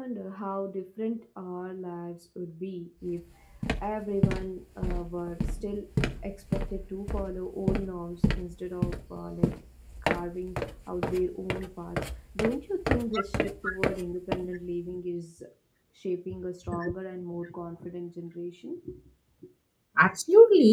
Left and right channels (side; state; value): both; identical; correlation 1.00